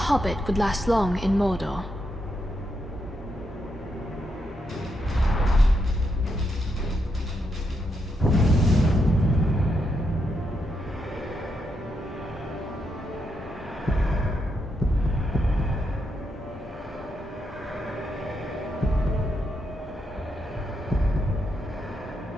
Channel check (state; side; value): normal; both; correlation 0.81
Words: would last long in Mordor.